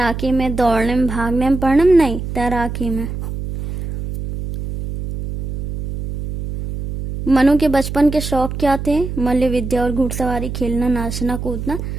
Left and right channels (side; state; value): right; noise; hum, 6 dB below the sound